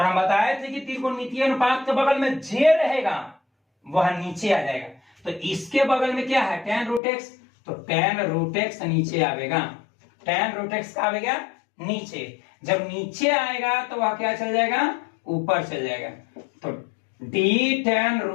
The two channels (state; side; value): drops out; right; at 7.0 s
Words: बताए थे कि त्रिकोणमितीय अनुपात के बगल में जे रहेगा वह नीचे आ जाएगा, तो इसके बगल में क्या है tan रूट x, तो tan रूट x नीचे आएगा, tan रूट x का आएगा नीचे, जब नीचे आएगा तो वह क्या चल जाएगा ऊपर चल जाएगा, तो d tan